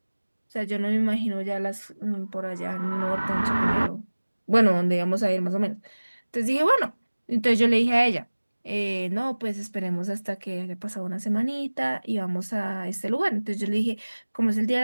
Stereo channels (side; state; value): both; inverted; correlation -1.00